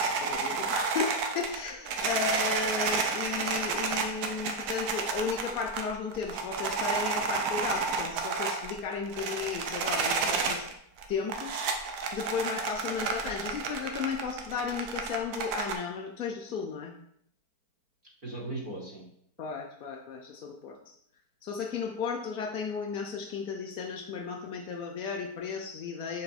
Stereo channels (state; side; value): late; left; 4.5 ms